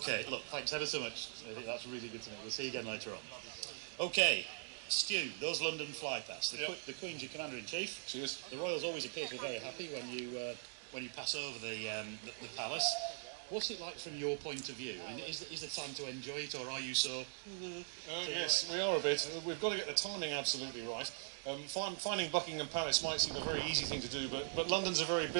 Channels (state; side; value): silent; left; digital silence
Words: look, thanks ever so much. That's really good to know. We'll see you again later on. OK, Stu, those London flypasts. The Queen's your Commander-in-Chief. Cheers. The Royals always appear to be very happy when you pass over the palace. What's it like from your point of view? I mean, is there time to enjoy it, or are you so... Yes, we are a bit. We've got to get the timing absolutely right. Finding Buckingham Palace might seem a very easy thing to do, but London's a very